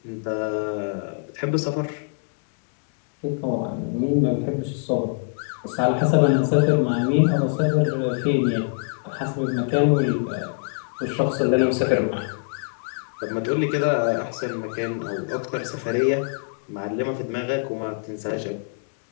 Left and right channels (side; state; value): right; silent; digital silence